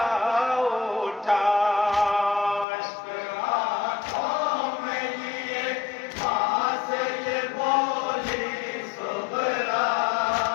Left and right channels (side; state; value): right; drops out; at 2.7 s